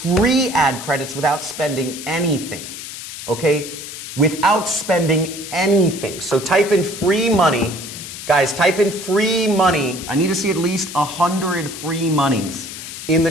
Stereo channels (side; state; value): left; noise; hiss, 10 dB below the sound